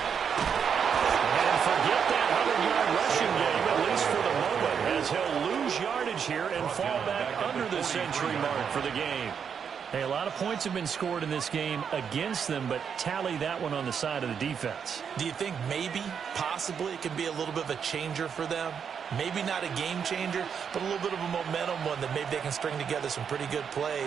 And forget that 100-yard rushing game, at least for the moment, as he'll lose yardage here and fall back under the century mark for the game. Hey, a lot of points have been scored in this game against them, but tally that one on the side of the defense. Do you think maybe, possibly, it can be a little bit of a changer for them? Maybe not a game changer, but a little bit of a momentum one that maybe they can string together some pretty good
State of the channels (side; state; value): left; quieter; 7.1 dB